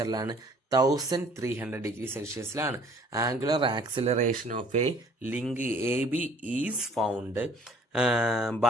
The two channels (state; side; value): normal; both; correlation 0.55